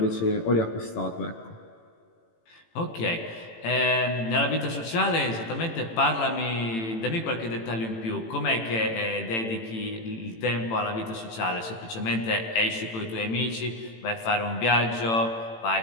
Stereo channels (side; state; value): right; late; 18 ms